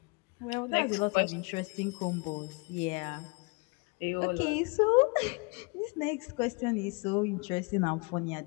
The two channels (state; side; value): quieter; right; 29.6 dB